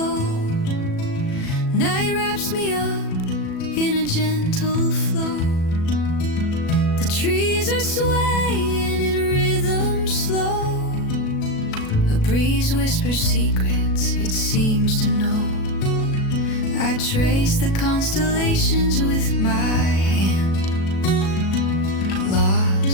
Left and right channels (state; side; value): late; right; 37 ms